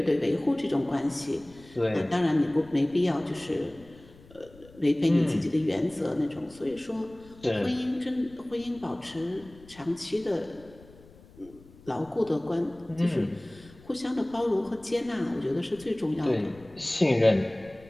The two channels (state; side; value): noise; left; rumble, 23 dB below the sound